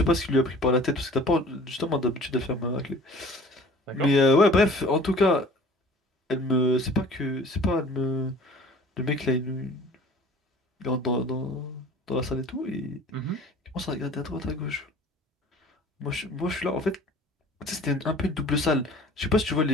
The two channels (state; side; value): normal; both; correlation 0.47